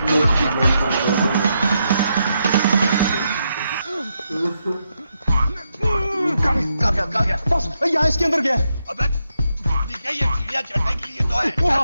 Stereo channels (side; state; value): both; inverted; correlation -0.82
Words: कहाँ गया? बॉस यहाँ इसके अंदर गया है। अबे क्या ये चिड़िया चढ़ने के लिए तो है?